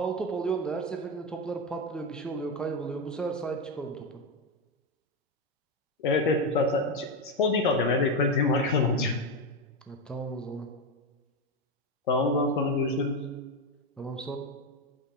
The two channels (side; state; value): both; normal; correlation 0.11